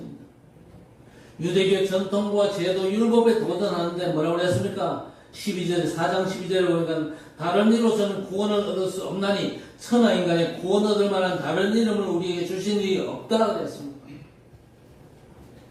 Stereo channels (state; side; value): identical; both; correlation 1.00